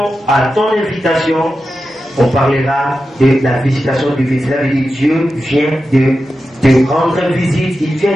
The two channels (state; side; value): normal; both; correlation 0.91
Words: à ton invitation, on parlera de la visitation divine. Cela veut dire Dieu vient de te rendre visite, il vient